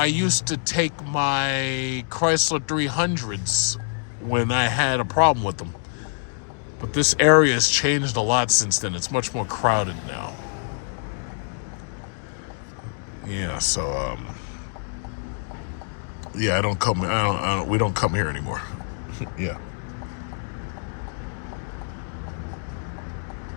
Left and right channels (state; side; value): silent; right; digital silence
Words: used to take my Chrysler 300s when I had a problem with them. But this area has changed a lot since then. It's much more crowded now. Yeah, so yeah, we don't come here anymore. Yeah.